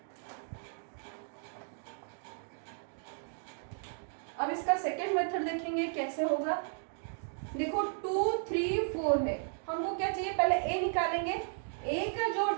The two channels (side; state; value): left; silent; digital silence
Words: अब इसका सेकंड मेथड देखेंगे कैसे होगा। देखो 2 3 4 है, हमको क्या चाहिए, पहले ए निकालेंगे। ए का जो